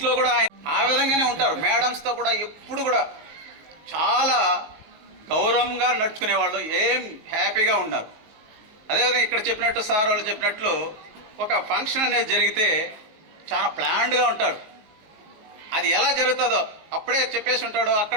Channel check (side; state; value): left; late; 19 ms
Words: కూడా ఆ విధంగానే ఉంటారు. మేడమ్స్తో కూడా ఎప్పుడు కూడా చాలా గౌరవంగా నడుచుకునేవాళ్ళు, ఏం హ్యాపీగా ఉన్నారు. అదేవిధంగా ఇక్కడ చెప్పినట్టు సార్ వాళ్ళు చెప్పినట్లు ఒక ఫంక్షన్ అనేది జరిగితే చాలా ప్లాన్డ్గా ఉంటాడు. అది ఎలా జరుగుతుందో అప్పుడే చెప్పేసి ఉంటాడు,